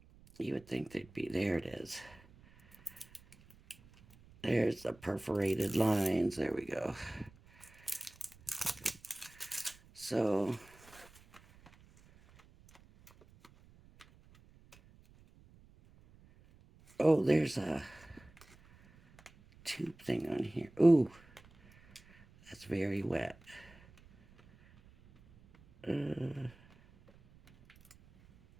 You would think they'd be. There it is. There's the perforated lines. There we go. So, oh, there's a tube thing on here. Ooh, that's very wet.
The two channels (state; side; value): noise; right; rumble, 25 dB below the sound